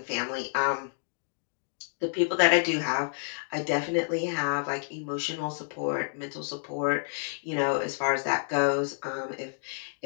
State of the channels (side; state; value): right; silent; digital silence